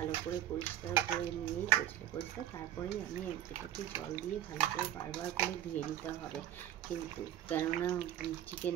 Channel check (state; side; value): quieter; left; 11.4 dB